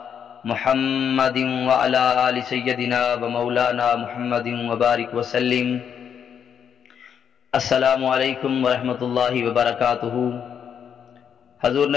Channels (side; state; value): right; quieter; 7.9 dB